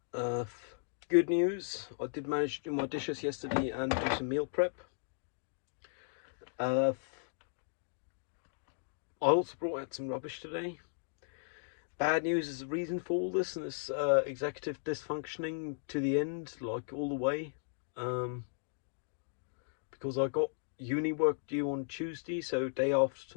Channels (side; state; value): right; silent; digital silence